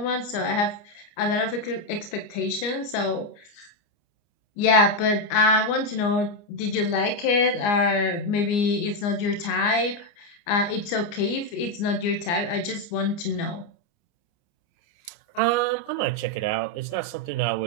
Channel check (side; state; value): right; late; 29 ms